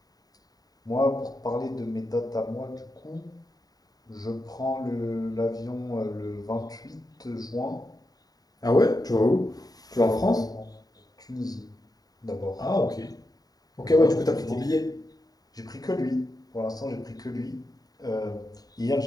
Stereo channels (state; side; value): late; right; 0.18 ms